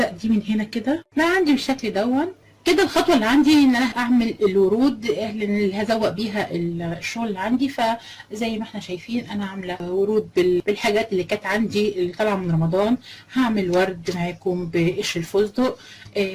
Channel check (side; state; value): both; identical; correlation 1.00